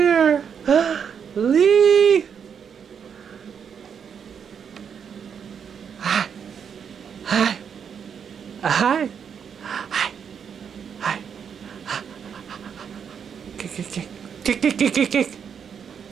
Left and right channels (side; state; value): left; quieter; 7.3 dB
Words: Lee! Hi. Hi. Hi. Hi. Hi. Kick, kick, kick. Kick, kick, kick, kick, kick.